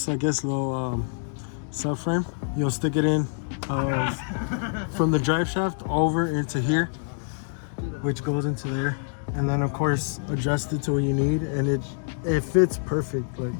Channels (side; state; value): right; silent; digital silence